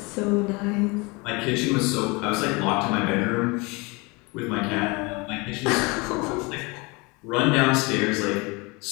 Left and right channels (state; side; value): quieter; right; 26.9 dB